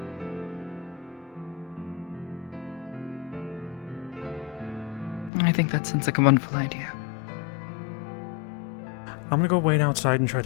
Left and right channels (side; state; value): right; drops out; at 5.3 s